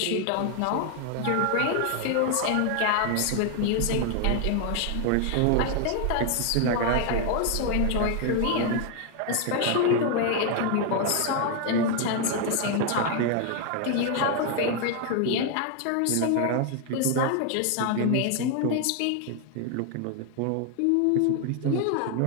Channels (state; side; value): different; both; correlation 0.00